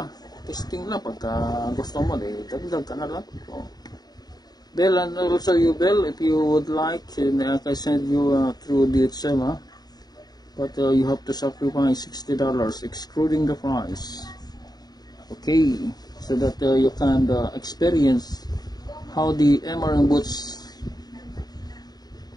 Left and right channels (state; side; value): late; right; 0.19 ms